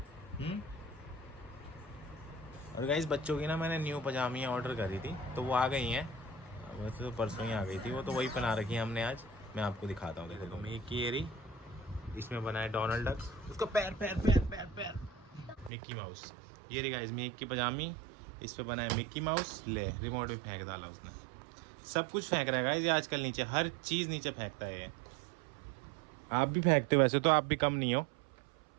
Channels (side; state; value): left; drops out; at 15.7 s